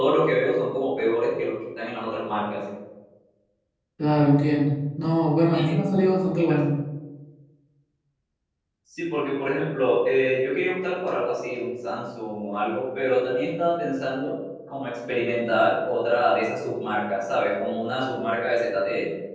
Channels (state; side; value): identical; both; correlation 1.00